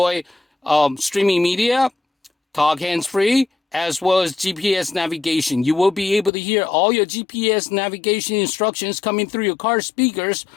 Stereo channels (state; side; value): drops out; right; at 6.3 s